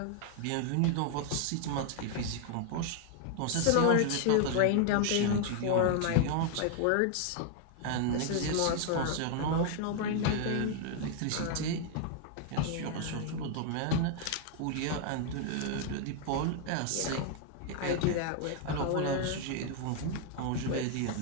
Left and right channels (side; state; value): both; different; correlation 0.00